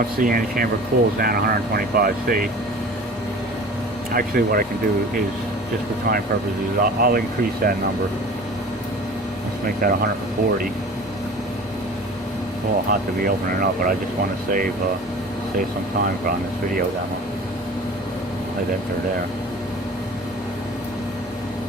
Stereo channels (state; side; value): normal; both; correlation 0.41